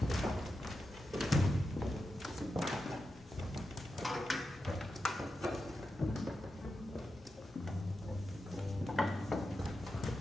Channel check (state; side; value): normal; both; correlation 0.89